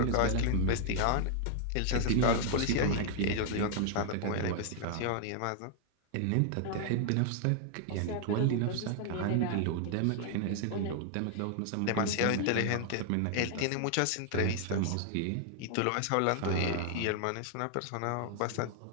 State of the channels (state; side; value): different; both; correlation 0.00